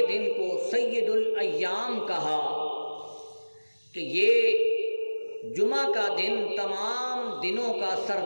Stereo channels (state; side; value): inverted; both; correlation -1.00